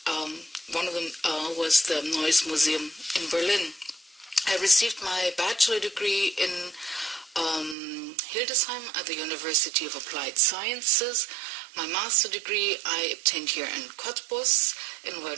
one of them was the Neues Museum in Berlin. I received my bachelor degree in Hildesheim at the University of Applied Sciences. My master degree I obtained here in Cottbus in World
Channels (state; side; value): drops out; left; at 7.8 s